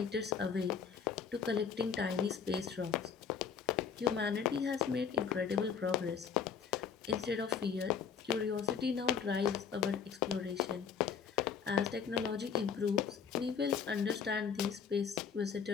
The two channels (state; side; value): quieter; right; 6.9 dB